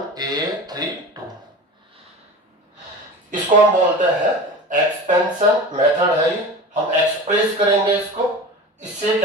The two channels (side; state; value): both; normal; correlation 0.33